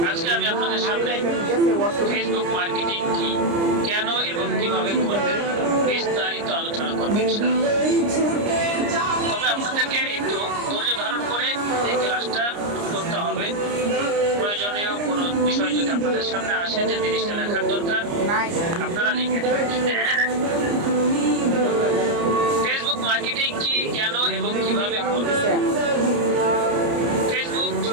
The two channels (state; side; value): late; left; 29 ms